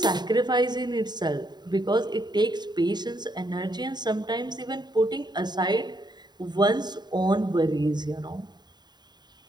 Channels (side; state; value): left; late; 0.20 ms